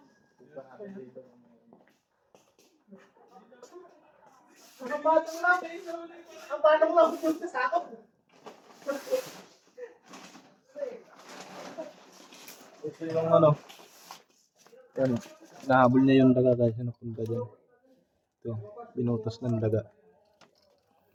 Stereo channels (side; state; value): both; identical; correlation 1.00